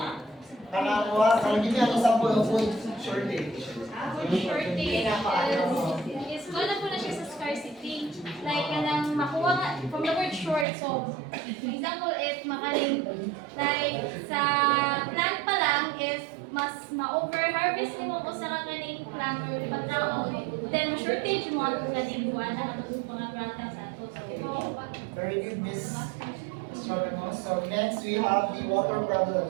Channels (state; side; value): drops out; left; at 10.7 s